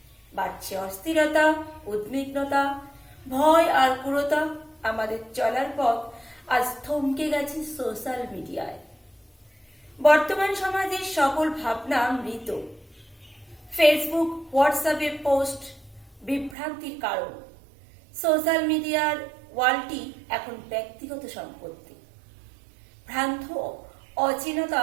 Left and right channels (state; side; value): drops out; left; at 16.6 s